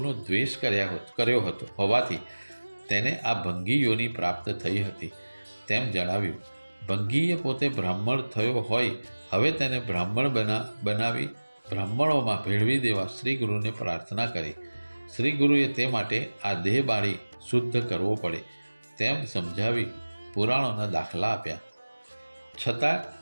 દ્વેષ કર્યો હતો હોવાથી તેને આ ભંગી યોનિ પ્રાપ્ત થઈ હતી તેમ જણાવ્યું. ભંગીએ પોતે બ્રાહ્મણ થયો હોય હવે તેને બ્રાહ્મણ બનાવી બ્રાહ્મણોમાં ભેળવી દેવા શ્રી ગુરુને પ્રાર્થના કરી. શ્રી ગુરુએ તે માટે આ દેહ બાળી શુદ્ધ કરવો પડે તેમ સમજાવી પુરાણોના દાખલા આપ્યા. છતાં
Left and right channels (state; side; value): inverted; both; correlation -1.00